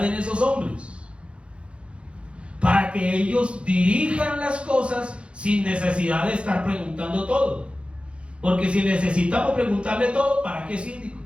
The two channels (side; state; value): left; late; 0.059 ms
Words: en esos hombres, para que ellos dirijan las cosas sin necesidad de estar preguntando todo. Porque si necesitamos preguntarle todo, ¿para qué síndicos?